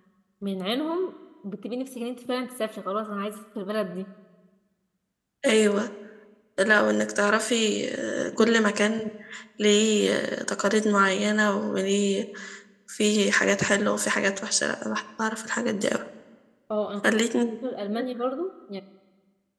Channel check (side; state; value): both; identical; correlation 1.00